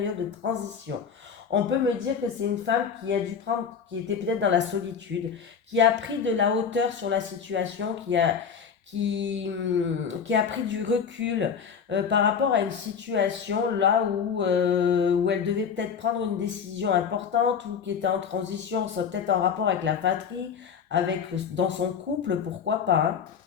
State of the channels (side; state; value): right; quieter; 6.8 dB